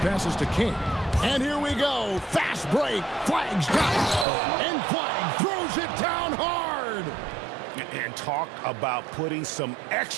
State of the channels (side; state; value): left; drops out; at 4.2 s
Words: passes to King. And here we go. Fast break. Flag's got it. And Flag throws it down hard. And talk about putting some